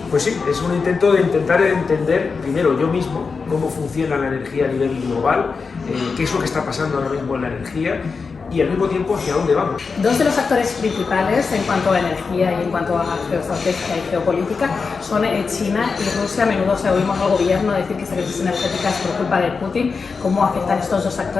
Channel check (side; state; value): right; quieter; 4.9 dB